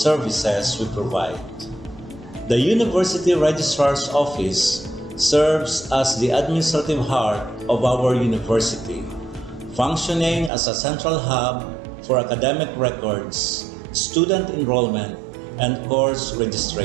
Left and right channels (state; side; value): drops out; left; at 10.5 s